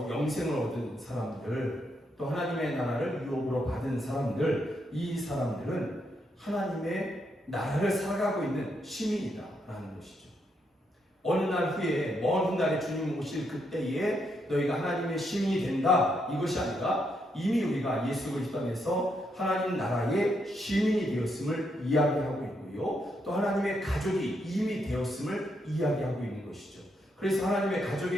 영생을 얻은 사람들, 또 하나님의 나라를 유업으로 받은 사람들, 이 사람들은 하나님의 나라를 살아가고 있는 시민이다라는 것이죠. 어느 날 후에, 먼 훗날에 주님 오실 그때에 너희가 하나님의 시민이 된다, 이것이 아니라 이미 우리가 예수 그리스도 안에서 하나님 나라의 시민이 되었음을 이야기하고 있고요, 또 하나님의 가족이 이미 되었음을 이야기하고 있는 것이죠. 그래서 하나님의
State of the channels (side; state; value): both; normal; correlation 0.78